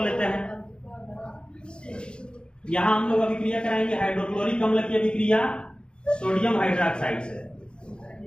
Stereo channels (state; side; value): late; right; 0.052 ms